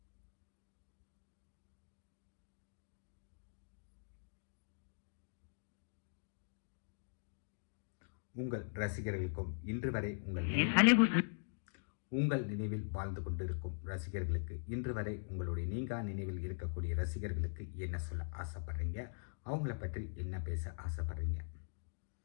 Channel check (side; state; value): right; silent; digital silence